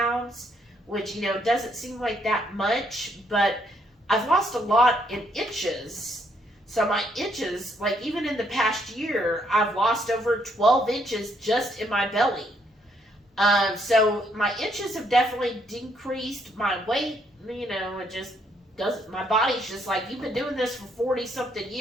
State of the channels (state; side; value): normal; both; correlation 0.71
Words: which, doesn't seem like that much, but I've lost a lot in inches. So my inches, like even in the past year, I've lost over 12 inches just in my belly. So my inches have definitely decreased. My weight, it just doesn't, my body's just like, you've been doing this for 40 something